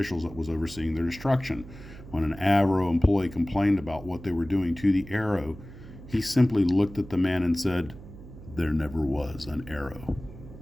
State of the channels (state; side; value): noise; right; hum, 16 dB below the sound